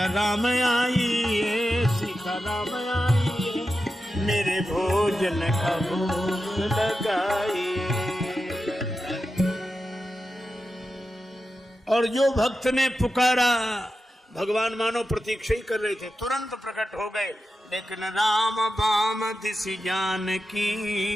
राम आइए, सीता राम आइए, मेरे भोजन का भोग लगाइए। और जो भक्त ने पुकारा, भगवान मानो प्रतीक्षा ही कर रहे थे, तुरंत प्रकट हो गए। लेकिन राम बाम दिसि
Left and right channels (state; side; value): normal; both; correlation 0.91